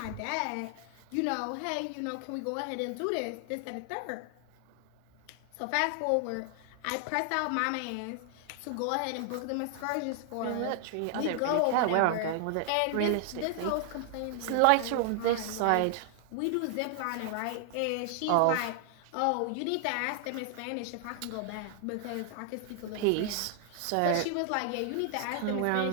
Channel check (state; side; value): different; both; correlation 0.00